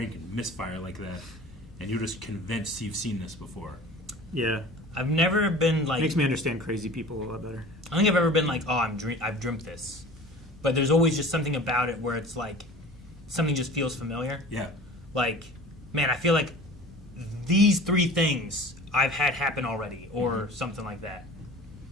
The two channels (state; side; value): normal; both; correlation 0.41